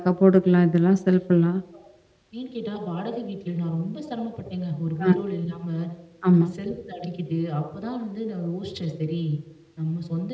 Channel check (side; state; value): both; identical; correlation 1.00